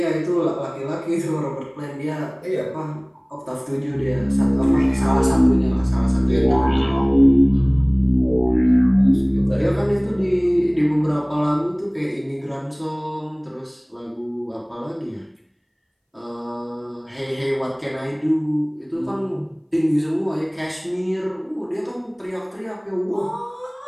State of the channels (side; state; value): both; identical; correlation 1.00